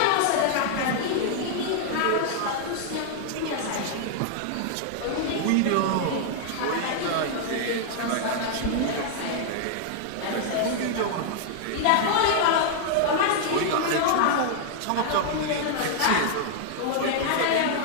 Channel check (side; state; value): both; different; correlation 0.00